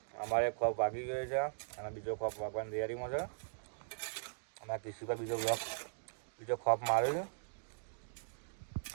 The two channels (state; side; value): silent; left; digital silence